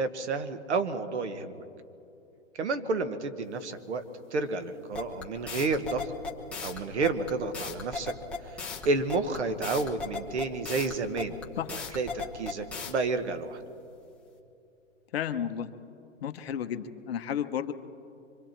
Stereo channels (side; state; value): both; normal; correlation 0.25